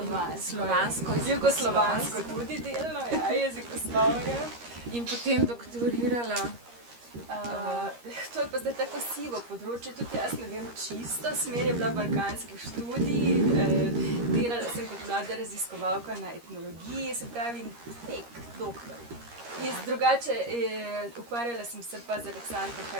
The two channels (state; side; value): late; left; 13 ms